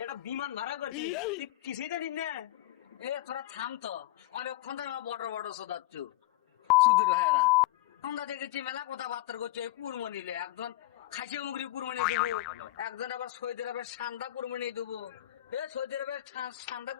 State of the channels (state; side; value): quieter; right; 15.7 dB